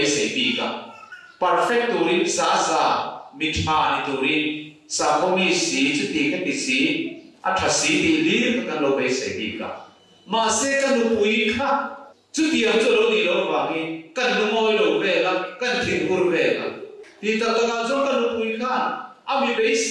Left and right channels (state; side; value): identical; both; correlation 1.00